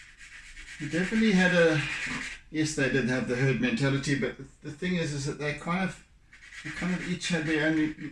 they definitely had a, yes, they did have the herd mentality, but the thing is that they kind of each had their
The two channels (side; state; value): both; identical; correlation 1.00